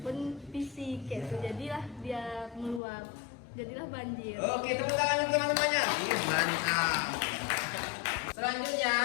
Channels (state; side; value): drops out; right; at 2.8 s